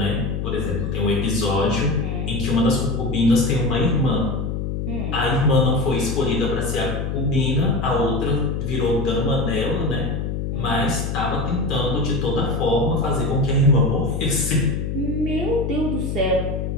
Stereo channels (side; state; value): left; noise; hum, 2 dB below the sound